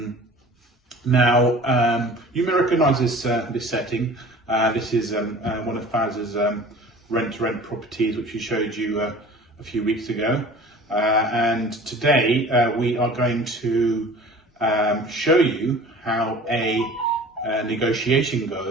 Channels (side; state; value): both; normal; correlation 0.43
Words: you may recognise this setting. This is one of Faz's rent-to-rent properties, which we showed you a few weeks ago. And today we are going to show you how a negotiation